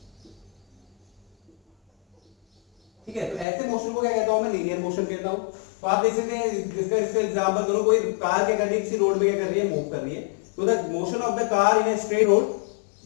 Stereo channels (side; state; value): right; drops out; at 3.5 s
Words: ठीक है, तो ऐसे मोशन को क्या कहता हूं मैं, लीनियर मोशन कहता हूं। तो आप देख सकते हैं, जिसका इसका एग्जांपल करो, कोई कार क्या कर रही है, किसी रोड में क्या कर रही है, मूव कर रही है। तो the motion of the car in a straight road,